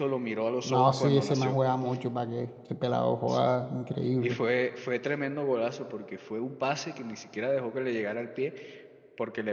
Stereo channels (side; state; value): both; identical; correlation 1.00